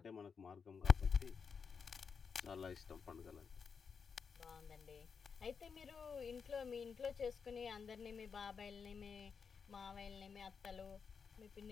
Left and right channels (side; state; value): right; quieter; 6.0 dB